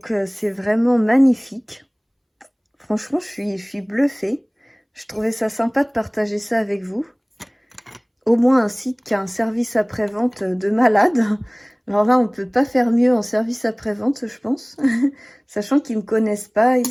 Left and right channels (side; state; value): both; identical; correlation 1.00